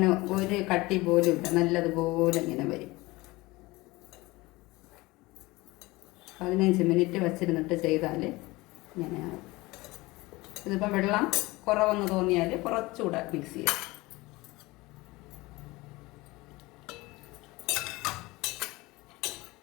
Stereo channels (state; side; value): quieter; right; 21.6 dB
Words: ഒരു കട്ടി പോലും ഇല്ല, നല്ലതുപോലെ ഇങ്ങനെ വരും. 15 മിനിറ്റ് വച്ചിരുന്നിട്ട് ചെയ്താൽ ഇങ്ങനെയാണ്. ഇതിപ്പോൾ വെള്ളം കുറവെന്ന് തോന്നിയാൽ കുറച്ചുകൂടെ മിക്സ് ചെയ്യാം.